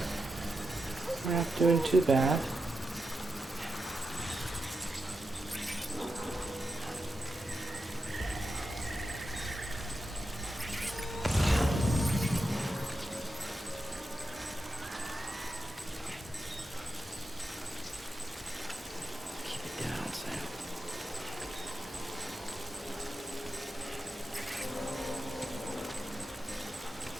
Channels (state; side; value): normal; both; correlation 0.89